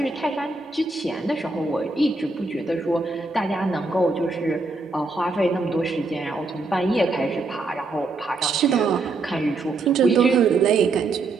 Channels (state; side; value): quieter; left; 3.5 dB